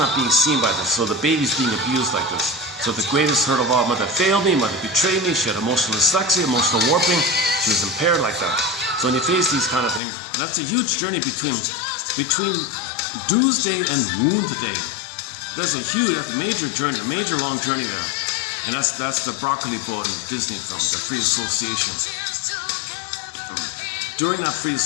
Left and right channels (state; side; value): drops out; right; at 10.0 s